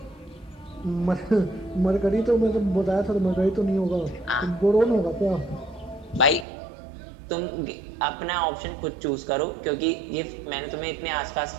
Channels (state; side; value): drops out; left; at 6.5 s